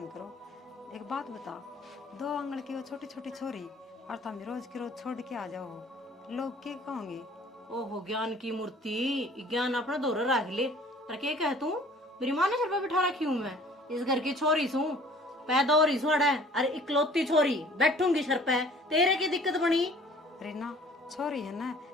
करो। एक बात बता, 2 आंगल की वो छोटी छोटी छोरी और तुम रोज की रोज छोड़ के आ जाओ, लोग क्या कहोगे? ओहो ज्ञान की मूर्ति, ज्ञान अपना दौर रख ले। और क्या कह तू मेरी माँ ने सिर पर बिठा रखी हूँ, मैं इस घर की छोरी सू, पैदा हो रही सोड़ा है, अरे इकलौती छोरी बैठूंगी सर पे, तेरे की दिक्कत बनी? रीना छोरी है ना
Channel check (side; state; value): both; normal; correlation 0.52